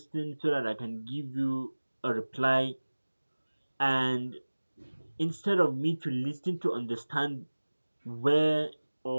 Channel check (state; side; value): inverted; both; correlation -1.00